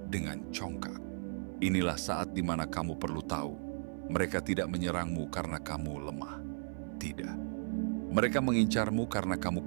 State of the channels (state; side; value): silent; left; 54 dB below the other